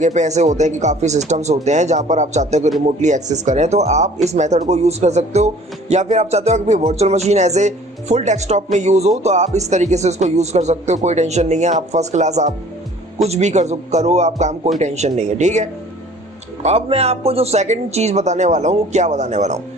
पे ऐसे होते हैं कि काफ़ी सिस्टम्स होते हैं जहाँ पर आप चाहते हो कि रिमोटली एक्सेस करें, तो आप इस मेथड को यूज़ कर सकते हो। या फिर आप चाहते हो कि virtual machine as a full desktop में यूज़ हो तो आप इस तरीके से इसको यूज़ कर सकते हो, कोई टेंशन नहीं है। आप फर्स्ट क्लास आप कुछ भी करो आप काम, कोई टेंशन नहीं है। ठीक है, अब मैं आपको जो सेकंड चीज़ बताने वाला हूँ वो क्या बताने वाला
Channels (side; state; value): both; normal; correlation 0.51